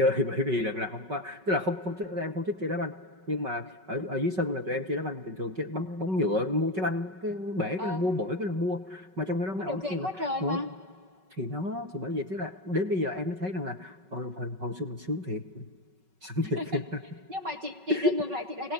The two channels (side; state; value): left; late; 5.3 ms